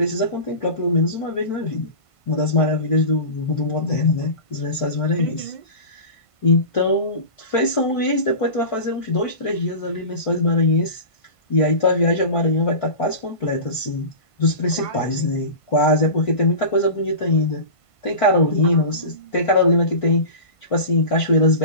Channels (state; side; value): late; right; 1.5 ms